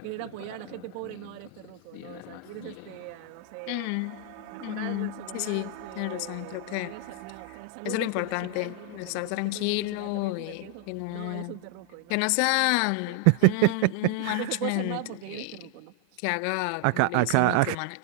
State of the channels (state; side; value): different; both; correlation 0.00